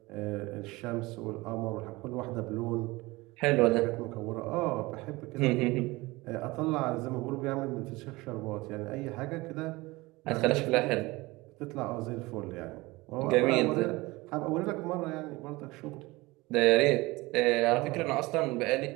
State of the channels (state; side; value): quieter; left; 21.8 dB